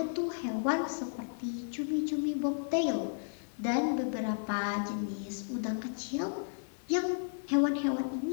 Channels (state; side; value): silent; right; digital silence